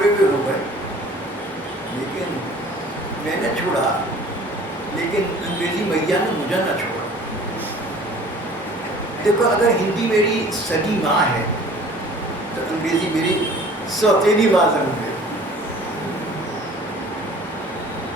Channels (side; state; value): both; normal; correlation 0.49